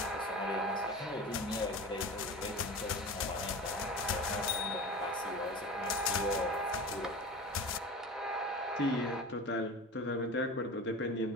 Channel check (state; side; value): normal; both; correlation 0.33